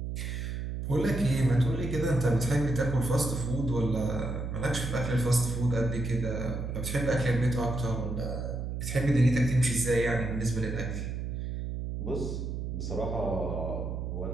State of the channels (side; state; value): right; noise; hum, 4 dB below the sound